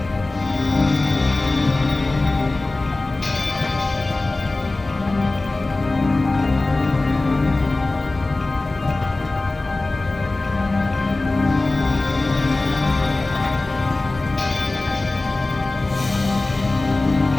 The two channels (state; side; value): quieter; right; 3.1 dB